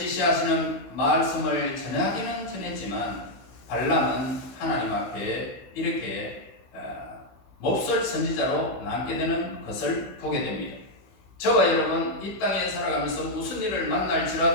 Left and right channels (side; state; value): right; late; 16 ms